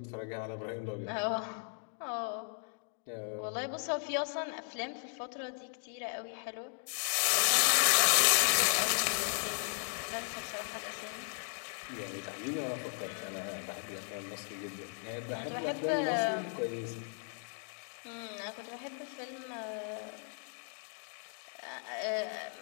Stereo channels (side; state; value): right; silent; 54 dB below the other